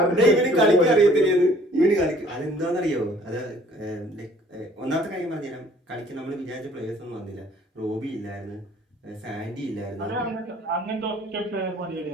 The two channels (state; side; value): normal; both; correlation 0.56